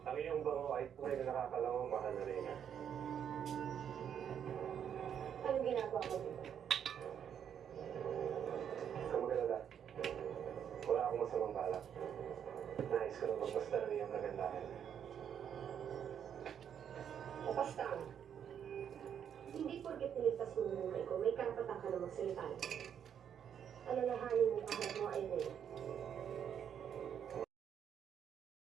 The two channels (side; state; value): left; quieter; 8.6 dB